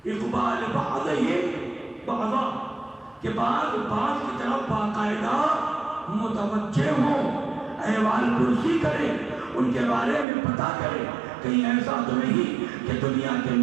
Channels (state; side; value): drops out; left; at 10.2 s